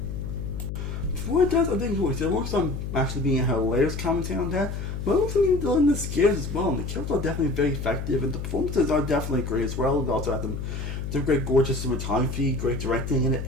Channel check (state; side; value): noise; left; hum, 5 dB below the sound